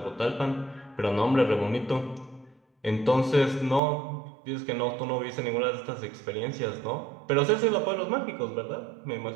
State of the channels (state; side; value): drops out; left; at 3.8 s